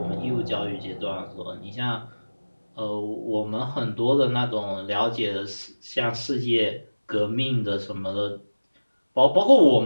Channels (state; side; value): inverted; both; correlation -1.00